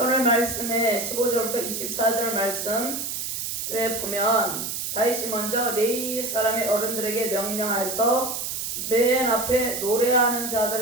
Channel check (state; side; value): noise; right; hiss, 4 dB below the sound